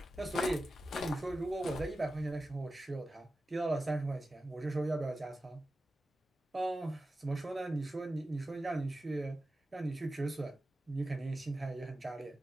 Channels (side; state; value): both; normal; correlation 0.93